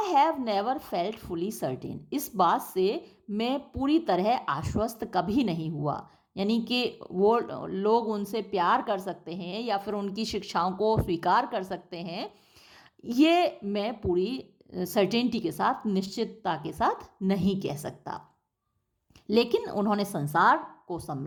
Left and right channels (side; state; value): both; identical; correlation 1.00